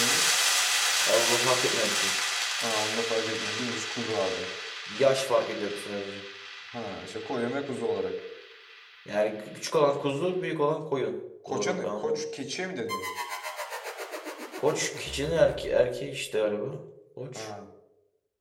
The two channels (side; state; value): both; identical; correlation 1.00